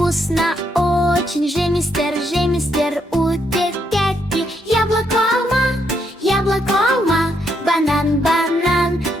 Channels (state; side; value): normal; both; correlation 0.76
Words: вкусно очень же, мистер, утепляйте. Яблоко, алма, банан,